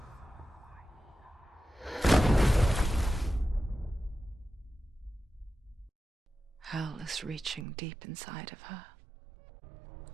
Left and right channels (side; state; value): left; drops out; at 7.7 s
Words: Hell is reaching deep inside of her.